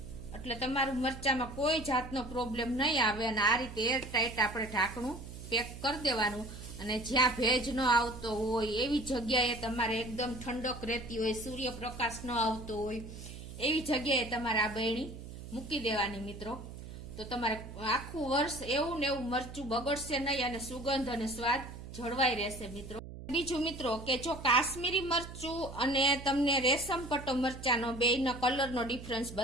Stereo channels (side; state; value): right; noise; hum, 12 dB below the sound